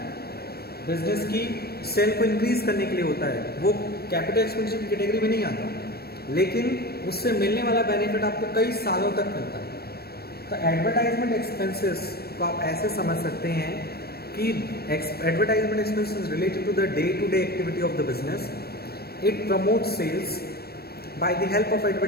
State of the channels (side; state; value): right; late; 0.46 ms